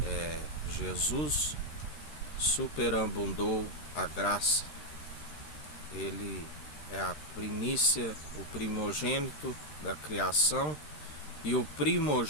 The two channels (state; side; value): late; right; 13 ms